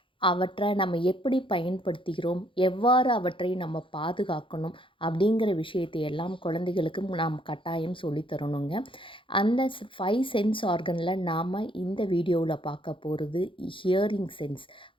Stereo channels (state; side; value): late; right; 0.25 ms